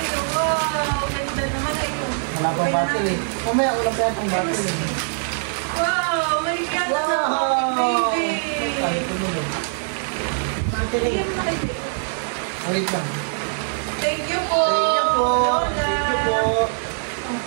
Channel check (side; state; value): left; silent; digital silence